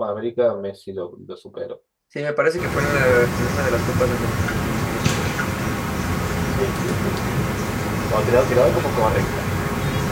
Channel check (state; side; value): identical; both; correlation 1.00